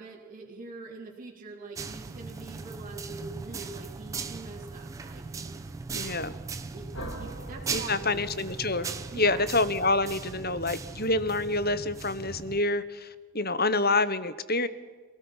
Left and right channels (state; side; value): normal; both; correlation -0.13